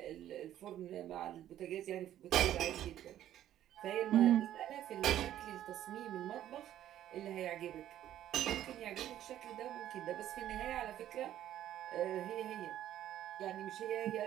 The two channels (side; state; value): left; quieter; 12.0 dB